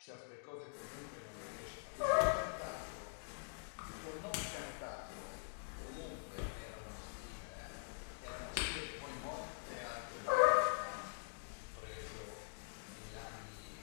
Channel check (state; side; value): silent; right; digital silence